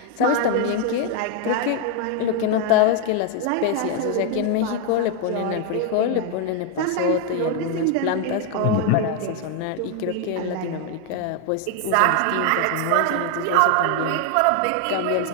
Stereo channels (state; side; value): different; both; correlation 0.01